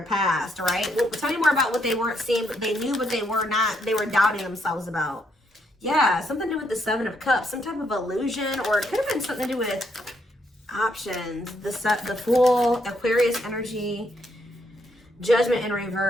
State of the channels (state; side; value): normal; both; correlation 0.75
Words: past, right? Well, tell me more about what they weren't seeing, but they knew, but they were not. They were doubting themselves about. Yeah, something to do with the Seven of Cups, some type of illusion, or it could have been something to do with options. The Fool, Aquarius energy, Judgment in